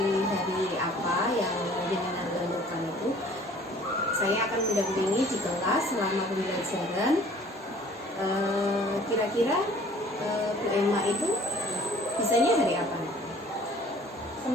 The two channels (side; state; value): both; normal; correlation 0.52